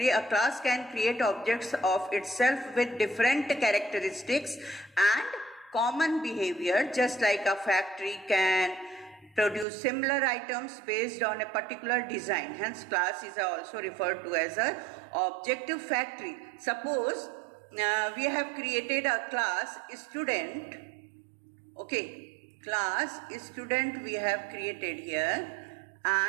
A class can create objects of itself with different characteristics and common behavior, just like a factory can produce similar items based on a particular design. Hence, class is also referred to as a object factory. Suppose we have created a class student. Okay, class student we have created here,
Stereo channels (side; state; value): left; drops out; at 9.7 s